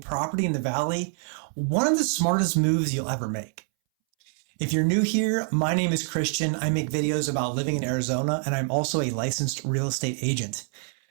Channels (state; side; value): silent; left; 61 dB below the other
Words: property in the valley one of the smartest moves you'll ever make. If you're new here, my name is Christian. I make videos about living in Arizona, and I'm also a licensed real estate agent.